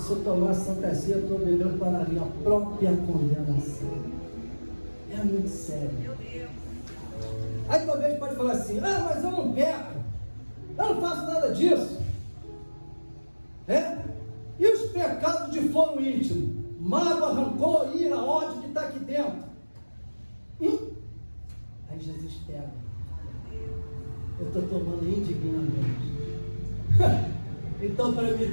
eu tomar a Santa Ceia, eu estou bebendo para a minha própria condenação. É muito sério. Aí talvez pode falar assim, mas eu não peco, eu não faço nada disso. E os pecados de foro íntimo, mágoa, rancor, ira, ódio que está aqui dentro. Aí Jesus pega. Eu estou tomando indignamente. Então, para me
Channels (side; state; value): both; inverted; correlation -1.00